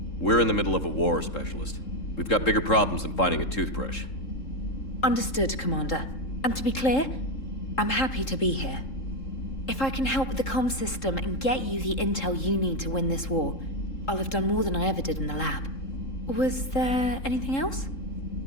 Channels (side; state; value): right; late; 3.7 ms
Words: We're in the middle of a war, Specialist. We've got bigger problems than finding a toothbrush. Understood, Commander. And to be clear, I'm happy to be here. If I can help with the comm system and get you the intel you need to win this war, I'll have done more than I ever did in the lab. Was there anything else?